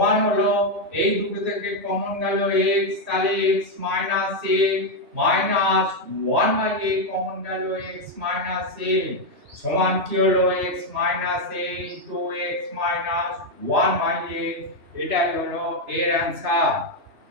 হলো এই দুটো থেকে কমন গেল x, তাহলে x minus a minus 1 by a common গেল x মাইনাস a সমান কি হলো x minus a into x minus 1 by a, এটাই হলো এর অ্যান্সার।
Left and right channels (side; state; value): left; late; 2.9 ms